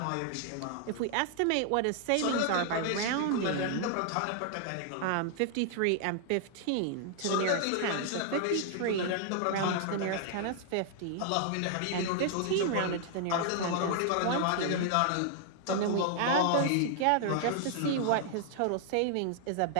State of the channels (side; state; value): both; different; correlation 0.00